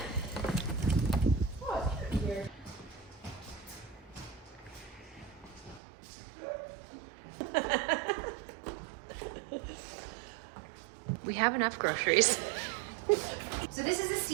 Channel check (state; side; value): drops out; left; at 5.8 s